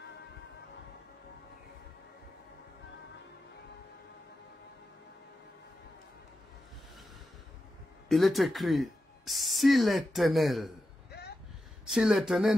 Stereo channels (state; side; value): normal; both; correlation 0.90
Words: Il est écrit, si l'Éternel